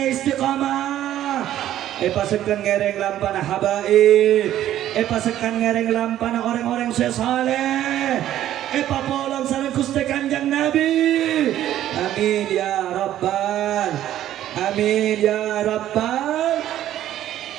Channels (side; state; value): left; quieter; 12.4 dB